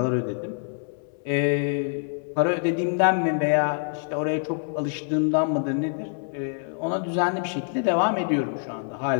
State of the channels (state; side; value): silent; right; 61 dB below the other